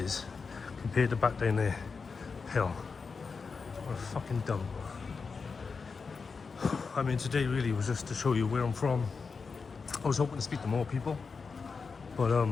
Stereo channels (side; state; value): right; quieter; 5.0 dB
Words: compared to back down there. Hell, what a fucking dump. I mean, today really was just to show you where I'm from. I was hoping to speak to more people, but